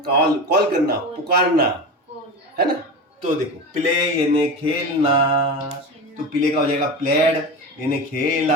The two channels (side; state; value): both; normal; correlation 0.26